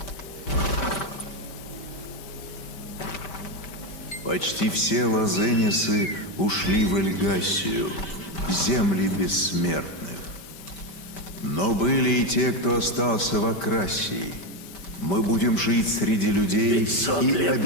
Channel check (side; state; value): right; late; 5.1 ms